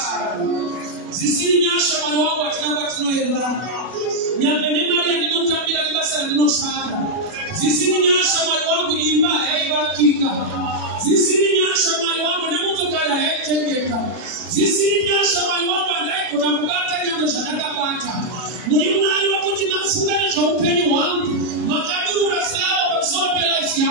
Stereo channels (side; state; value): left; late; 40 ms